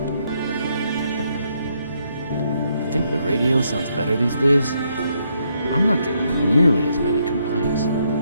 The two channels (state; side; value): inverted; both; correlation -0.75